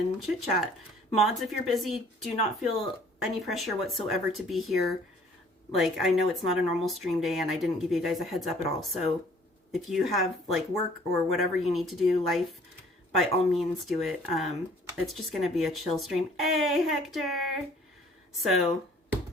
chit chat. Mods, if you're busy, do not feel any pressure whatsoever to be here. Like, I know it's not a normal stream day and I didn't give you guys a heads up at all. So if you have like work or whatever you need to do, life, by all means do it. It's just going to be a chill stream. Hey, Hector. So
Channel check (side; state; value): both; normal; correlation 0.56